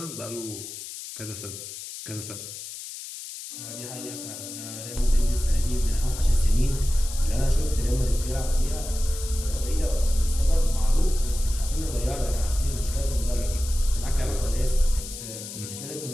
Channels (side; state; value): left; noise; hiss, 10 dB below the sound